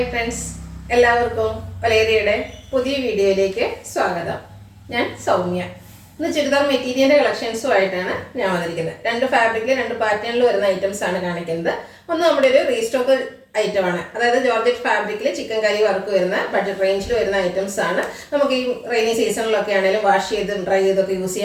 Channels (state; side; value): identical; both; correlation 1.00